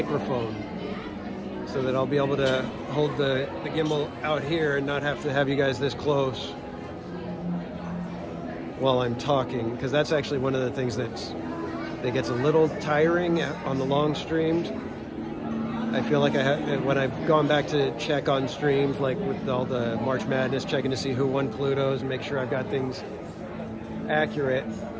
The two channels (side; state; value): both; identical; correlation 1.00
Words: so that I'll be able to hold the gimbal out here and not have to have you guys this close while I'm talking, because that's actually one of the things that gets a little tiring on the long streams. I feel like when I've gone back to check on streams, like with all the March Madness, checking to see who won Pluto's and make sure I've got things accurate.